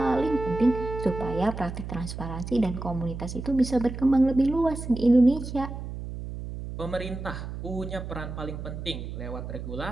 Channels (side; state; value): right; noise; hum, 8 dB below the sound